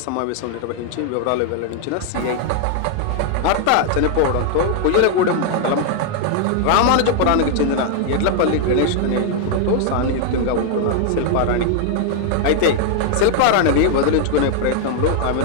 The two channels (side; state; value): both; different; correlation 0.00